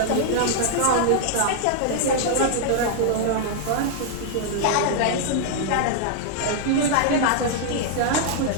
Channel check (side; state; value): both; different; correlation -0.01